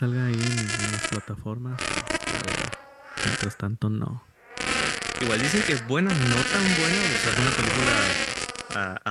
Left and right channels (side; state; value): both; identical; correlation 1.00